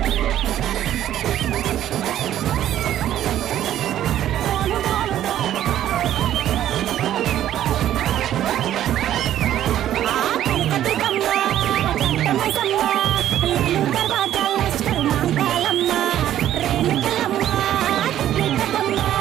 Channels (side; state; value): left; quieter; 11.9 dB